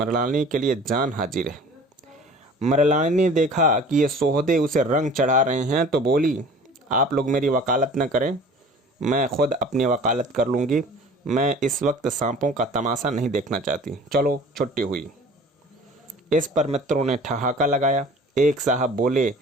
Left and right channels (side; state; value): both; normal; correlation 0.45